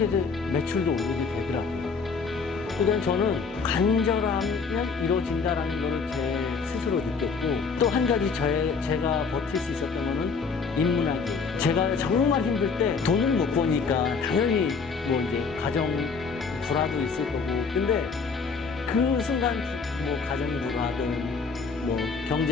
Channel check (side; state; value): right; quieter; 5.1 dB